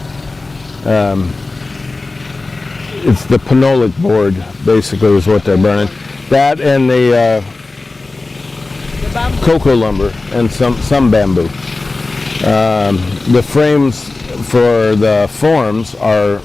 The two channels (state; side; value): quieter; right; 3.4 dB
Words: it's the phenolic board, basically, is what they're burning. That and the cocoa lumber and some bamboo. The frames for the forms are